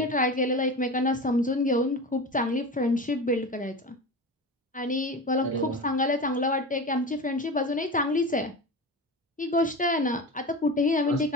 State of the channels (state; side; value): normal; both; correlation 0.28